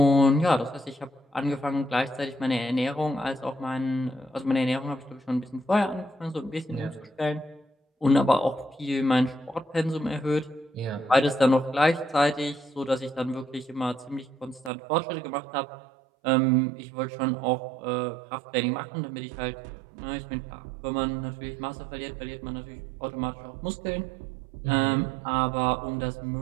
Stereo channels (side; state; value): left; drops out; at 14.7 s